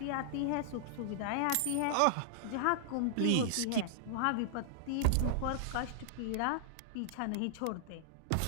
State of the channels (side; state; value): both; different; correlation -0.01